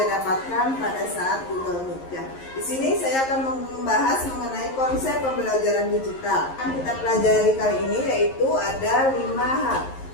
dapatkan pada saat Google Meet ya. Di sini saya akan membahas mengenai konsep pembelajaran digital. Yang kita pelajari kali ini yaitu ada 5 hal.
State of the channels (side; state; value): right; late; 11 ms